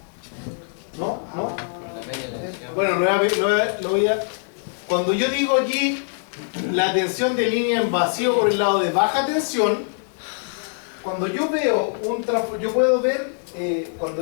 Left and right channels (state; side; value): silent; right; digital silence